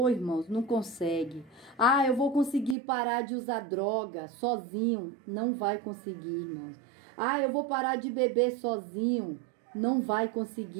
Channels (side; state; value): left; drops out; at 2.8 s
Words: Irmãos, não consegue. Eu vou conseguir parar de usar droga sozinho. Não vai conseguir, irmãos. Eu vou parar de beber sozinho. Não vai